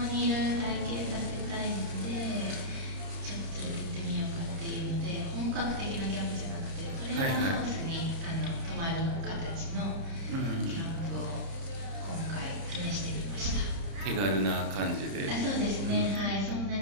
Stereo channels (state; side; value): late; left; 30 ms